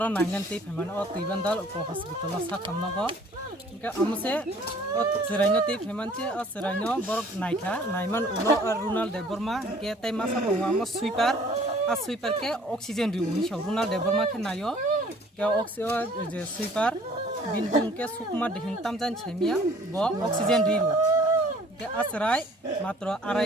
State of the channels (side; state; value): both; normal; correlation 0.54